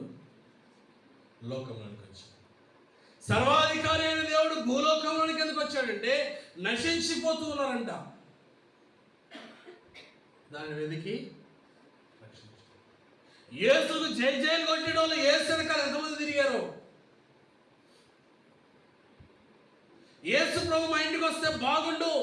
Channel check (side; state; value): both; identical; correlation 1.00